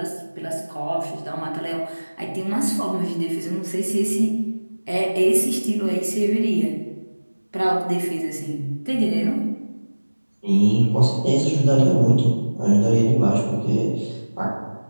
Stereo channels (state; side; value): inverted; both; correlation -1.00